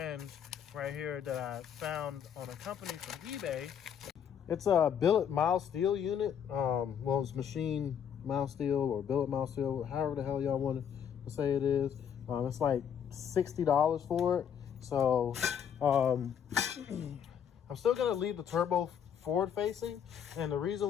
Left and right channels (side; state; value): right; quieter; 8.3 dB